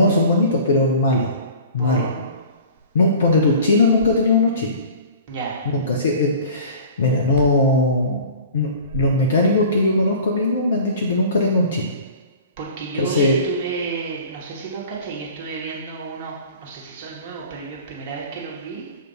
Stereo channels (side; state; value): both; inverted; correlation -0.42